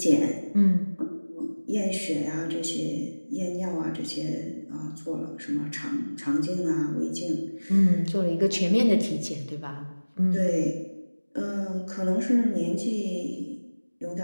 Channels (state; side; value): inverted; both; correlation -1.00